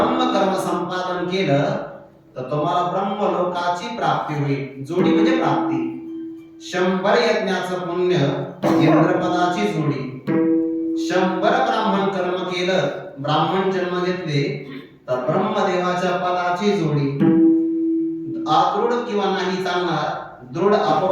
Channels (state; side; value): identical; both; correlation 1.00